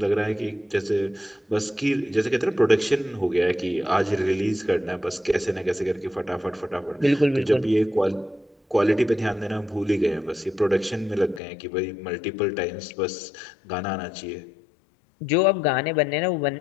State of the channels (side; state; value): right; drops out; at 11.4 s